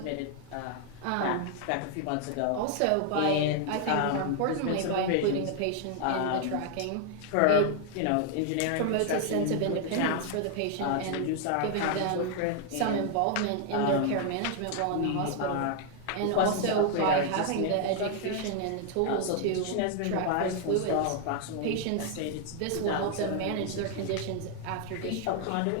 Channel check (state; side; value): different; both; correlation 0.00